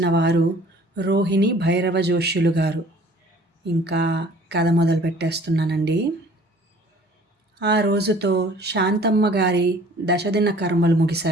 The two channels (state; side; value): normal; both; correlation 0.52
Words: వారు రోహిణి భైరవ జోష్యులు గారు. ఇంకా కథ మొదలుపెట్టేస్తున్నానండి. ఆ రోజుతో శాంతమ్మ గారి దశదిన కర్మలు